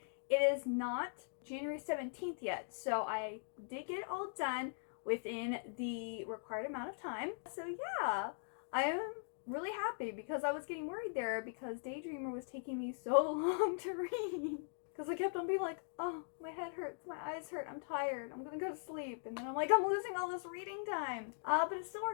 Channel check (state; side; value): silent; right; digital silence